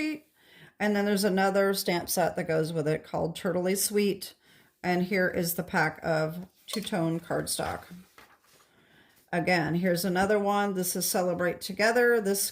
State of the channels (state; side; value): identical; both; correlation 1.00